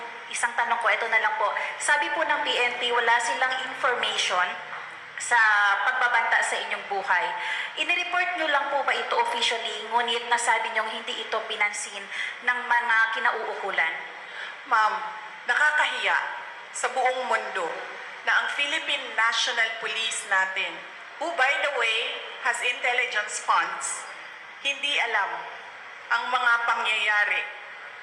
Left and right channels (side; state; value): both; identical; correlation 1.00